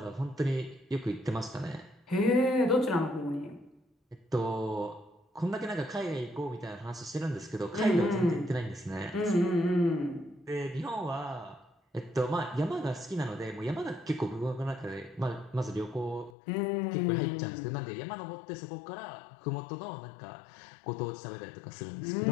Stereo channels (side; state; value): right; drops out; at 16.3 s